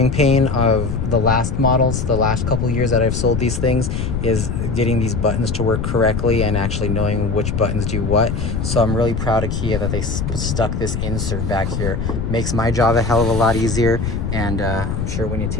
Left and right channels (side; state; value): left; noise; rumble, 2 dB below the sound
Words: pain of the last models, the last couple of years that I've sold these things, is getting these buttons to work correctly and actually knowing which buttons do what. So I'm really proud of Kia that they stuck this insert back here. Makes my job a hell of a lot easier, and I'm sure when you